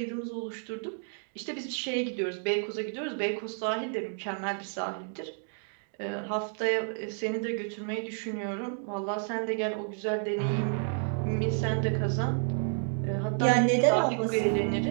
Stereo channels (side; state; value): left; silent; 57 dB below the other